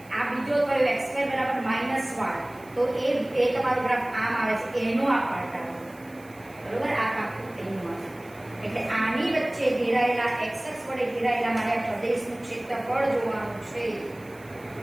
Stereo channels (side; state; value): right; noise; hiss, 26 dB below the sound